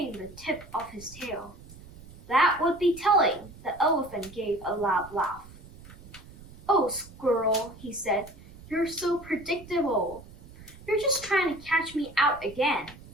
the tip of his tail. That would be telling. The elephant gave a loud laugh. Oh, squirrel, he said, you're so predictable. You're just trying to catch me out again.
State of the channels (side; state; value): right; noise; rumble, 19 dB below the sound